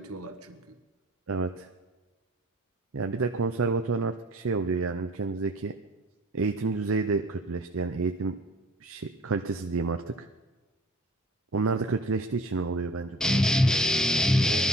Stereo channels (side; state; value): both; normal; correlation 0.47